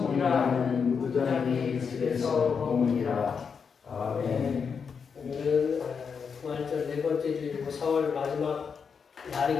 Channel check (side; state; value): right; quieter; 6.1 dB